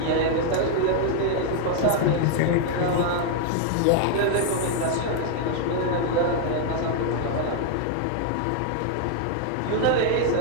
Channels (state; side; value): different; both; correlation 0.00